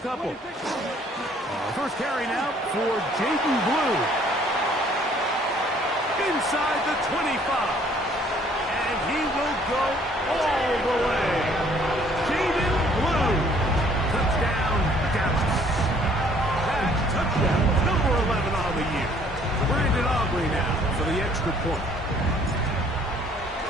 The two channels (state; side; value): normal; both; correlation 0.60